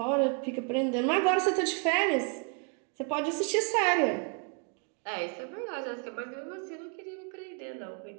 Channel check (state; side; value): quieter; left; 35.8 dB